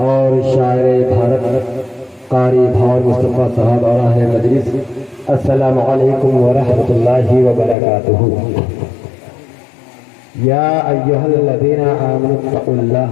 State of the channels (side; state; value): right; drops out; at 7.8 s